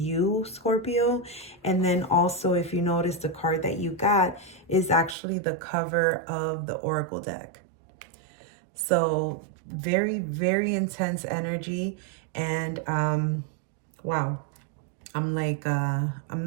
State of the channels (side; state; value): left; drops out; at 5.2 s